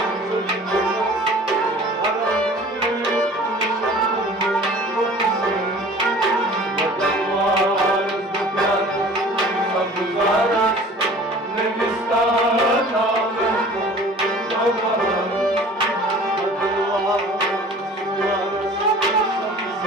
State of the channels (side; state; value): both; normal; correlation 0.46